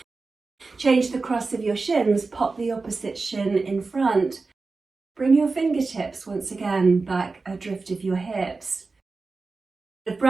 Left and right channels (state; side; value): quieter; left; 3.9 dB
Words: Change the cross of your shins, pop the opposite shin in front. Bring your fingertips once again back adrift of your hips. The